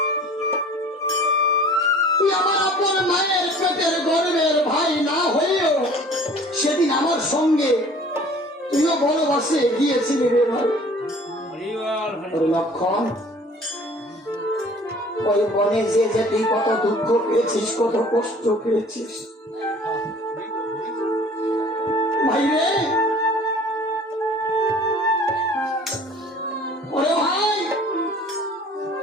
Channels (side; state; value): both; normal; correlation 0.49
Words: তুই আমার আপন মায়ের পেটের গর্বের ভাই না হয়েও সেদিন আমার সঙ্গে তুইও বনবাসে গিয়েছিলি রে ভাই। লক্ষণ, ওই বনে যে তুই কত দুঃখ পেয়েছিস, কত কষ্ট পেয়েছিস ভাই রে। ওরে ভাই,